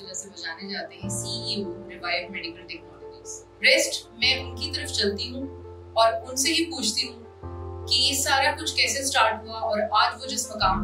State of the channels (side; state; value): both; identical; correlation 1.00